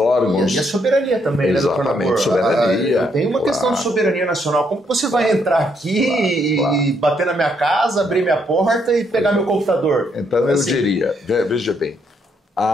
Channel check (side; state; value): both; normal; correlation 0.74